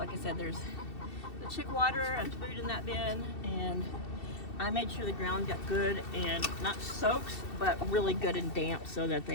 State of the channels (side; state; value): right; late; 2.7 ms